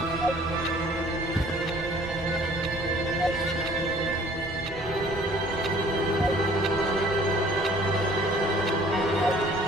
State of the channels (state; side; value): normal; both; correlation 0.54